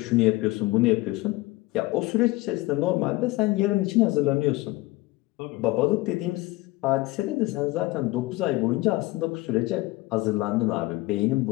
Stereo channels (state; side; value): quieter; right; 20.2 dB